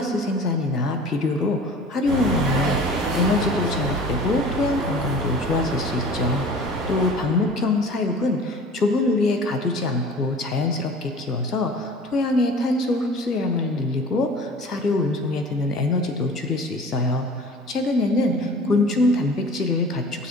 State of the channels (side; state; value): both; normal; correlation 0.43